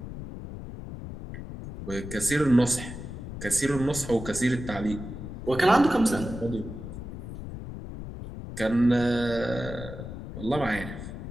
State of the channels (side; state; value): left; noise; rumble, 9 dB below the sound